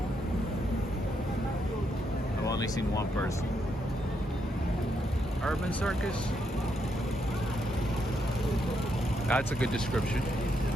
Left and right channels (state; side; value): normal; both; correlation 0.78